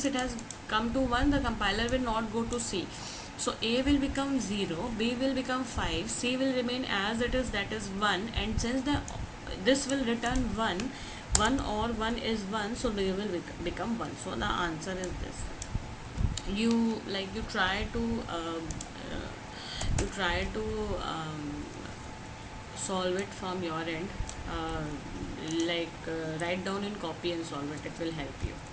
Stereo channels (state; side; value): identical; both; correlation 1.00